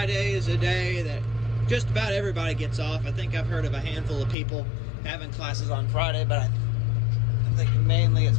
is a day that just about everybody gets off. I think I've heard of a handful of people having classes on Friday, but I think mainly it's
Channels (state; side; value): drops out; right; at 4.4 s